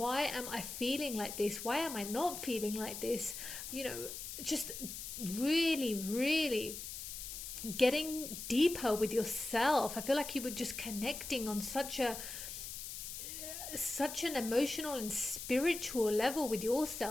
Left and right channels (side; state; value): left; noise; hiss, 8 dB below the sound